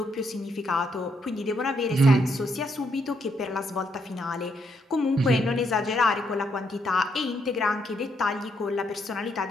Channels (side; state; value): both; normal; correlation 0.75